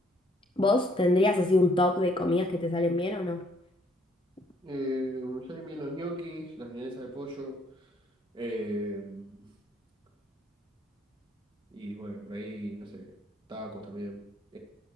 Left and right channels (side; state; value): both; normal; correlation 0.65